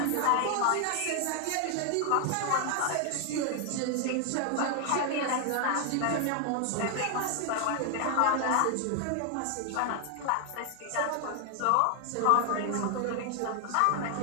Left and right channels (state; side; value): different; both; correlation 0.00